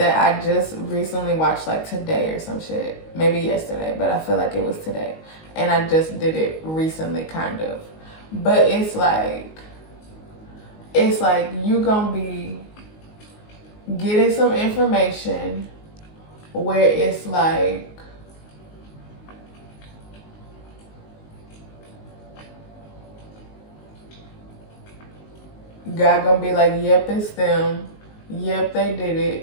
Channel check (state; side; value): late; right; 19 ms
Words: I just recently watched, like today or some shit. Maybe yesterday, but I feel like it was today. And I just did it recently, kind of. But it's like you gonna be getting some information where it's like, God gonna be like, yep, it's them. Yep, they did